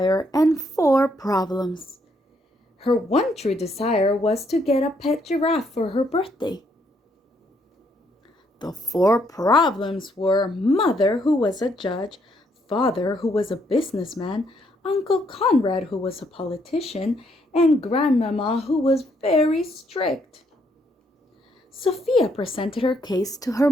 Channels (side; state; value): both; normal; correlation 0.72